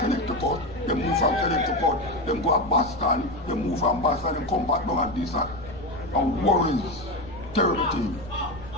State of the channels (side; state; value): left; noise; rumble, 16 dB below the sound